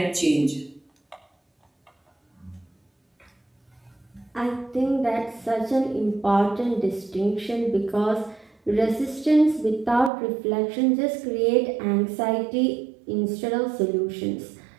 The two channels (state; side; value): drops out; left; at 10.1 s